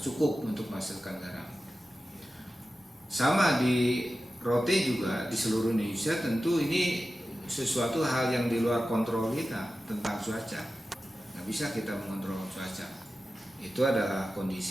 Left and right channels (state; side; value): normal; both; correlation 0.93